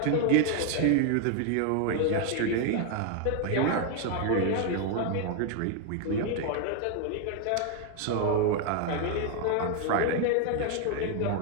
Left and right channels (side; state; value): both; different; correlation 0.00